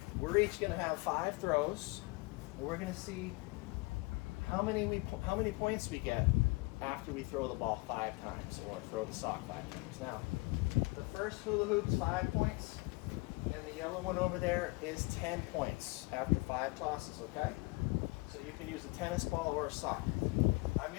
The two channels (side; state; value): right; quieter; 25.5 dB